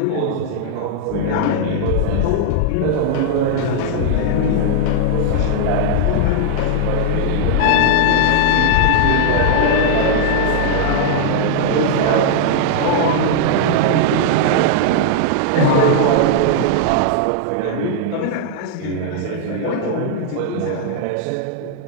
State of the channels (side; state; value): both; different; correlation -0.01